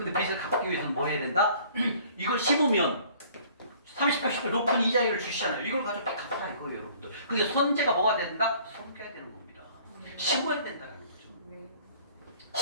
빚을 갚기 위해서는 뭐 해야 된다? 이걸 심으면 30%, 80% 높은 이자율을 주시잖아요. 이걸 가지고 빚 갚으라 이거예요, 여러분들. 근데 선제가 뭐가 된다? 섬겨야 되는 겁니다. 심어야 된다는 거죠.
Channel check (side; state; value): both; inverted; correlation -0.54